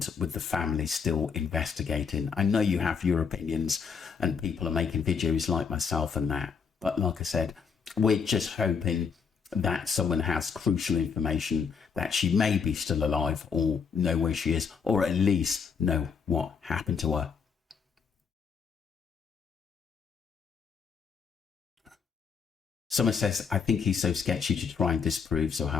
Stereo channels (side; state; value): right; quieter; 6.0 dB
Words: with the family still investigating. I know you have your opinions and people are making videos like myself and that, but like I said, we're just hoping that someone has crucial information that she may be still alive or know where she is, or at least know what happened to her. Someone says, I think he's so sketchy to try and disprove